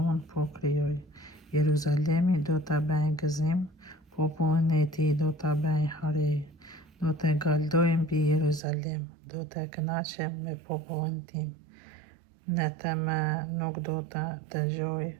unë po krijoj. Jeruzalemi do të bëjë gëzim, popullin e tij do ta bëjë hare, do të galdoj mbi Jeruzalem, do të kënaqem me popullin tim. Në të më nuk do të dëgjoj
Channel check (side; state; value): left; drops out; at 8.6 s